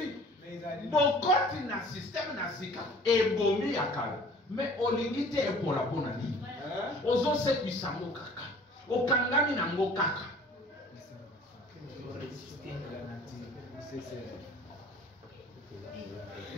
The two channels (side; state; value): both; normal; correlation 0.49